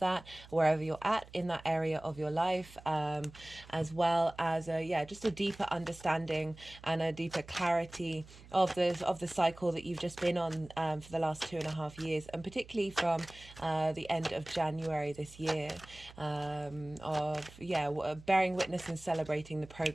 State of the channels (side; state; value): right; noise; hum, 20 dB below the sound